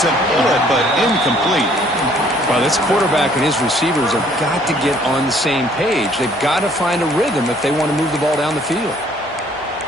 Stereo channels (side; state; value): left; noise; hum, 29 dB below the sound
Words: a bullet, but incomplete. Well, this quarterback and his receivers have got to get on the same page. They've got to find a rhythm if they want to move the ball down the field.